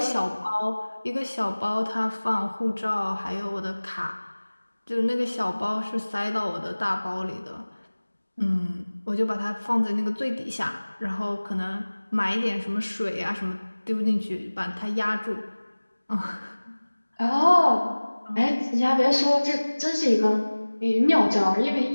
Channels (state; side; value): inverted; both; correlation -1.00